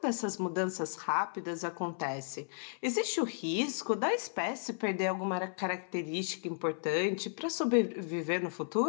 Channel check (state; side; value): silent; right; 55 dB below the other